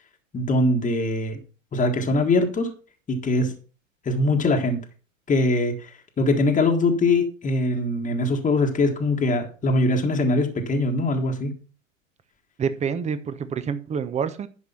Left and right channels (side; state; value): both; normal; correlation 0.45